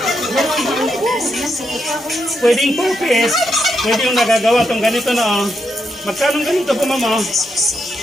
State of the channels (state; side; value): normal; both; correlation 0.82